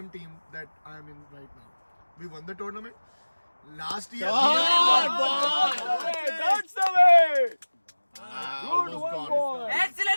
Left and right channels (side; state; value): both; inverted; correlation -1.00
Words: team that I am in right now. We won the tournament. Last year, That's the way. Good one, boy.